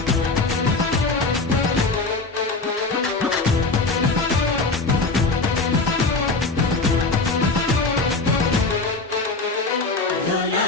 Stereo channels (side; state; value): right; quieter; 3.6 dB